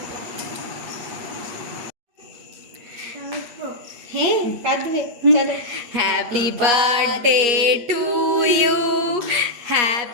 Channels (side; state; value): left; late; 8.4 ms